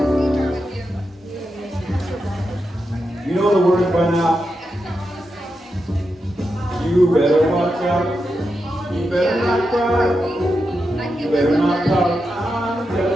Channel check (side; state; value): both; normal; correlation 0.87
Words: You know the words by now. You better watch out. You better not cry. You better not pout. I'm